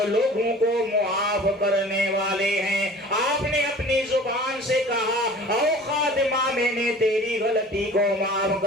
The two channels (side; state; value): both; normal; correlation 0.44